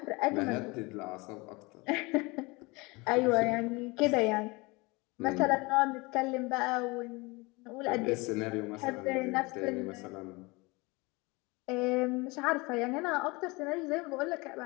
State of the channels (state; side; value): quieter; right; 25.2 dB